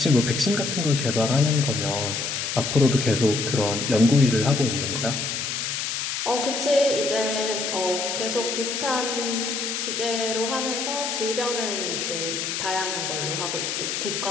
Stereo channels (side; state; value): left; noise; hiss, 2 dB below the sound